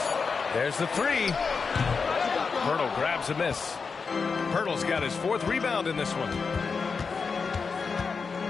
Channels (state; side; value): quieter; right; 5.1 dB